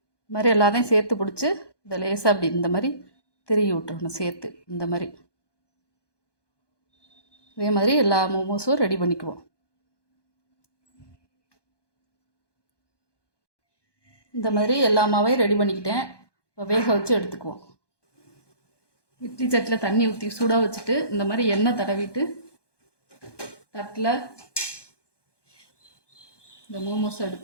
இது மாதிரி எல்லாத்தையும் சேர்த்து பிடிச்சி இதை லேசாக அப்படி இந்த மாதிரி திருகி விட்டுறணும் சேர்த்து இந்த மாதிரி. இதே மாதிரி எல்லா மோமோஸும் ரெடி பண்ணிக்குவோம். இந்த மாதிரி எல்லா மாவையும் ரெடி பண்ணிக்கிட்டேன். இப்போ வேக வச்சு எடுத்துக்குவோம். இட்லி சட்டியில் தண்ணி ஊற்றி சூடாக வச்சுட்டு இந்த மாதிரி எண்ணெய் தடவிட்டு தட்டில் இந்த மோமோஸ்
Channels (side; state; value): right; late; 1.2 ms